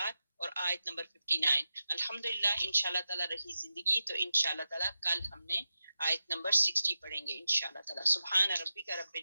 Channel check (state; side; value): inverted; both; correlation -0.91